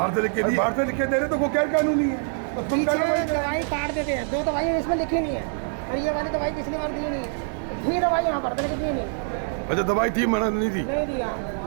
से लिख के बाहर से लिख के दे रहे तो वो गैर कानूनी है। तो तुम दवाई काट देते हैं, 2 दवाई इसमें लिखी नहीं है और ये वाली दवाई पिछली बार दी नहीं है। थी दवाई यहाँ पर लेकिन दी नहीं। अच्छा दवाई थी, मना नहीं थी, नहीं दिया।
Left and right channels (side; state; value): left; silent; 62 dB below the other